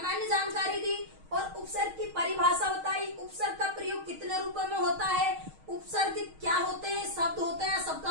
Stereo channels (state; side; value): late; left; 6.4 ms